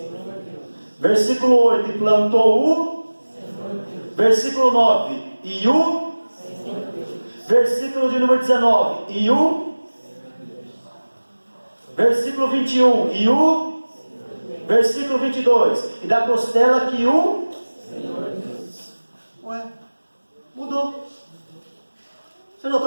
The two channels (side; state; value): both; inverted; correlation -1.00